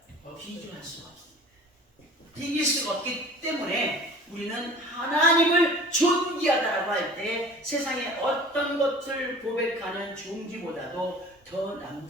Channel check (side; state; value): both; normal; correlation 0.43